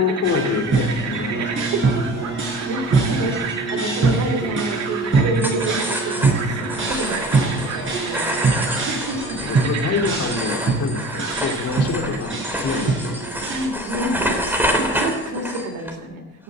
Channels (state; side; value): normal; both; correlation 0.42